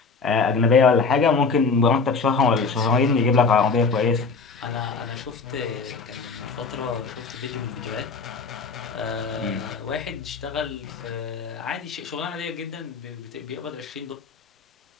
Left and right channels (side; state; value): right; quieter; 4.7 dB